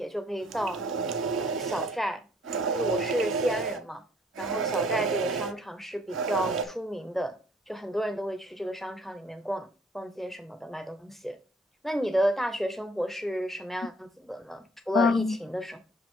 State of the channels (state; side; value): normal; both; correlation 0.60